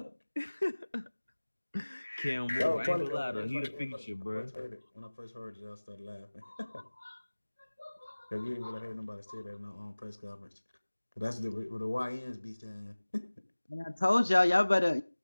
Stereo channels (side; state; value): both; inverted; correlation -1.00